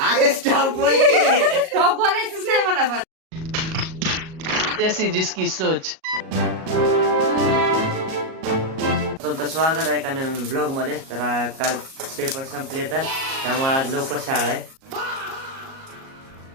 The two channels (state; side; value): late; left; 37 ms